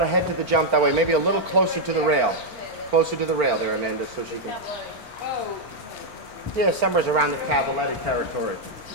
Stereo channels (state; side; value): late; left; 4.4 ms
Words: head to the jump that way. Maybe a little closer to the rail. Closer to the rail there, Amanda, so she can... Yeah, somewhere's around the Cavaletti territory.